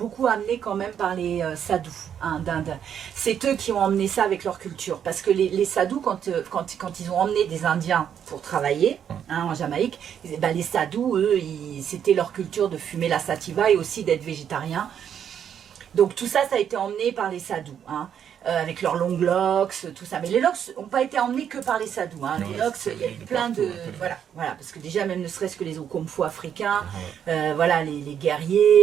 amené quand même par les sadhus d'Inde. C'est eux qui ont emmené ça avec leur culture. Parce que les sadhus, quand ils ont emmené des Indiens pour travailler en Jamaïque, les sadhus, eux, c'était leur culture de fumer la sativa et aussi d'être végétarien. Donc tout ça, ça a été emmené par les sadhus, avec leurs longs locks, tout ça. Mais les locks n'ont pas été emmenés que par les sadhus. Les locks, il y a eu plein de... Voilà, parce que déjà, même ne serait-ce que les Okomfo africains, voilà, les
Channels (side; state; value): left; quieter; 8.7 dB